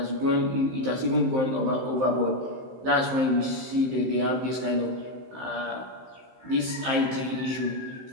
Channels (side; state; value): left; late; 15 ms